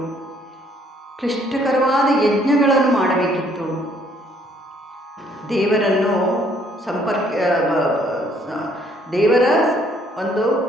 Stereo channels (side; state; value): both; normal; correlation 0.64